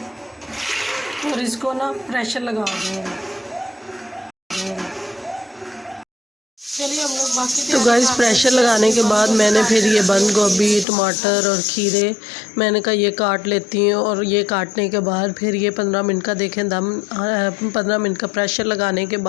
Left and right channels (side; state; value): right; drops out; at 10.9 s